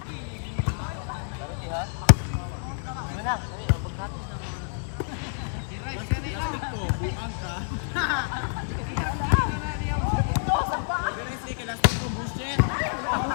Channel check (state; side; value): silent; right; digital silence